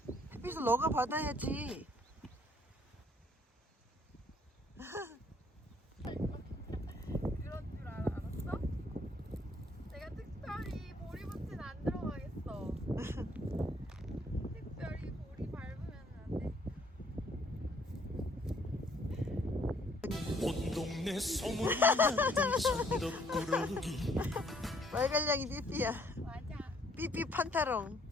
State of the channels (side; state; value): both; normal; correlation 0.64